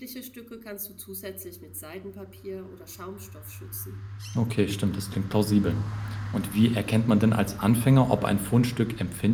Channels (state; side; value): identical; both; correlation 1.00